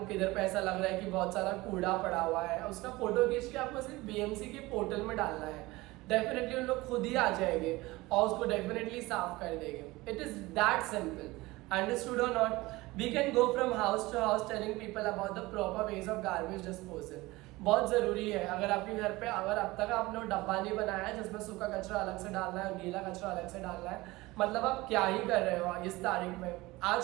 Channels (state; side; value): quieter; left; 20.5 dB